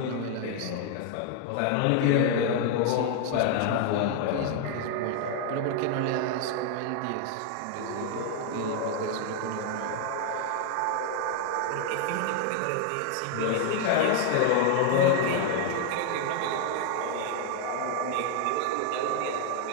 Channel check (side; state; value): both; different; correlation 0.00